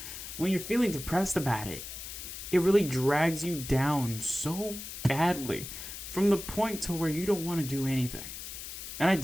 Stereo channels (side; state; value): left; noise; hiss, 9 dB below the sound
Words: When you're feeling depressed about it, it really drags you down so badly from the point to where you don't want to do anything. And I